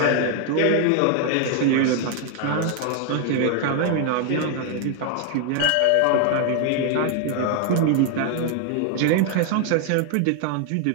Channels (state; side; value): different; both; correlation 0.00